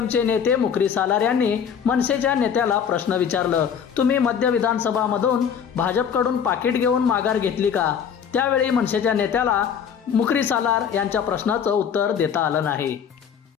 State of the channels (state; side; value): quieter; right; 7.6 dB